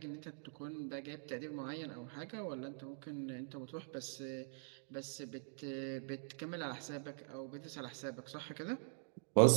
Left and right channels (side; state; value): left; silent; digital silence